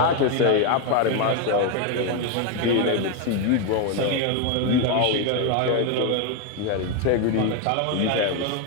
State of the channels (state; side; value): different; both; correlation 0.01